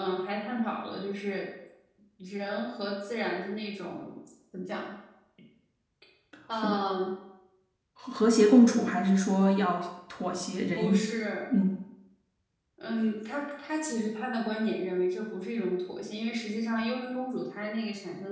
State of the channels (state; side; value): identical; both; correlation 1.00